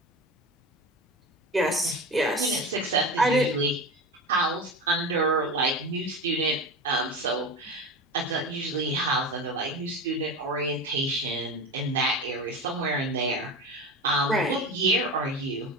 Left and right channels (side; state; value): both; normal; correlation 0.27